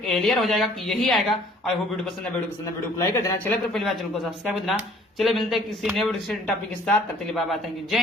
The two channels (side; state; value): both; normal; correlation 0.56